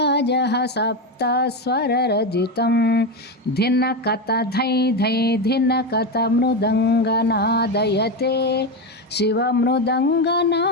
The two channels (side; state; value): both; normal; correlation 0.14